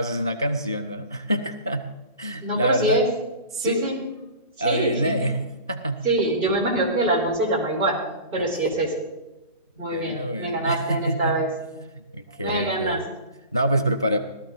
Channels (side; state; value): both; inverted; correlation -0.37